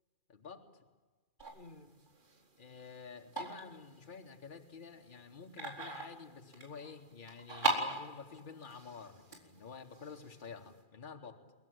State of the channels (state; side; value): late; right; 2.4 ms